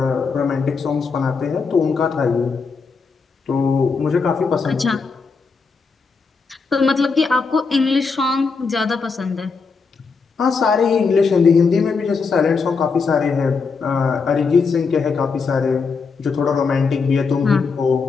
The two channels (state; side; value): quieter; right; 4.9 dB